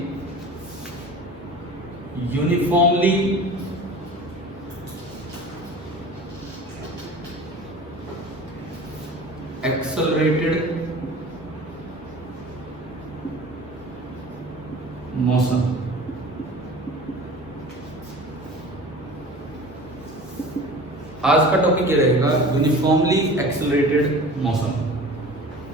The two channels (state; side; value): noise; left; hum, 21 dB below the sound